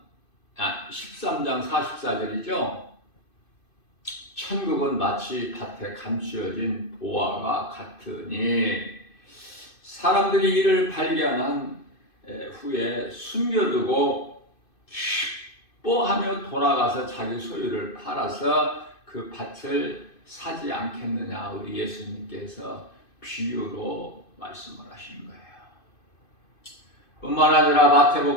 44절이죠. 천국은 마치 밭에 감추어진 보화가 같으니 사람들이 이를 발견한 후에 숨겨두고 기뻐하며 돌아가서 자기 소유를 팔아서 그 밭을 사지 않겠느냐. 우리 예수님께서 비유로 말씀을 하시는 거예요. 뿐만 아니라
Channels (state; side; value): late; right; 2.6 ms